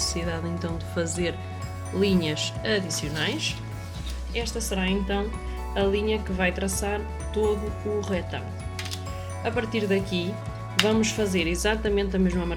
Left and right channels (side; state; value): both; identical; correlation 1.00